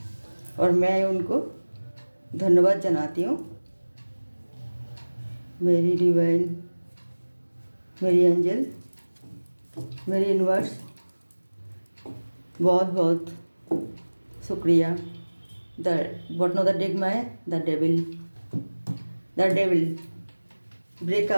और मैं उनको धन्यवाद जनाती हूँ। मेरी डिवाइन, मेरी एंजल, मेरी यूनिवर्स, बहुत बहुत शुक्रिया। The bottom of the deck में द डेविल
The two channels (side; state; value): both; inverted; correlation -1.00